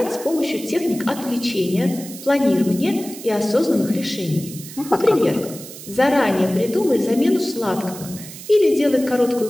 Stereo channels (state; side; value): noise; right; hiss, 14 dB below the sound